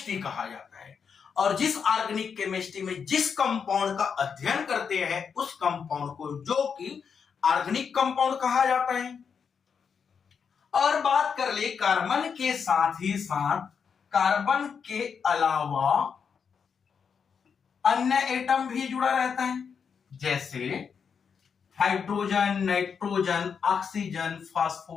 कहा जाता है। और जिस ऑर्गेनिक केमिस्ट्री में जिस कंपाउंड का अध्ययन करते हैं उस कंपाउंड को जो कि ऑर्गेनिक कंपाउंड कहा जाता है। और बात कर ले कार्बन के साथ ही साथ कार्बन के अलावा अन्य एटम भी जुड़ा रहता है, जैसे hydrogen, nitrogen, oxygen,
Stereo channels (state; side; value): quieter; right; 6.5 dB